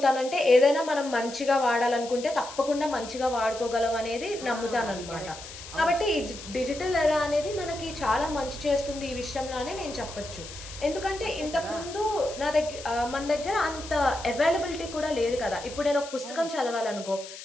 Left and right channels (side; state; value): left; noise; hiss, 13 dB below the sound